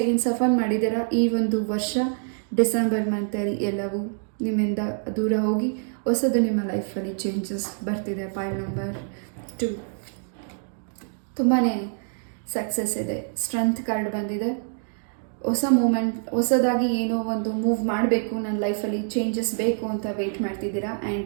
ಏನು ಸಫರ್ ಮಾಡಿದ್ದೀರಾ, ಈ ಒಂದು ವರ್ಷ ಡಿಸೆಂಬರ್ ಮಂತಲ್ಲಿ ಎಲ್ಲವೂ ನಿಮ್ಮಿಂದ ದೂರ ಹೋಗಿ ಹೊಸದು ನಿಮ್ಮ ಲೈಫಲ್ಲಿ ಚೇಂಜಸ್ ಬರ್ತಿದೆ. ಪಾಯಿಂಟ್ ನಂಬರ್ 2, ತುಂಬಾ ಸಕ್ಸಸ್ ಇದೆ. ಸ್ಟ್ರೆಂತ್ ಕಾರ್ಡ್ ಬಂದಿದೆ. ಹೊಸ ಮೂಮೆಂಟ್, ಹೊಸದಾಗಿ ಏನೋ ಒಂದು ಮೂವ್ ಮಾಡಬೇಕು, ನನ್ನ ಲೈಫಲ್ಲಿ ಚೇಂಜಸ್ ಬೇಕು ಅಂತ ವೆಯ್ಟ್ ಮಾಡ್ತಿದ್ದೀರಾ.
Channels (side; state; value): left; silent; digital silence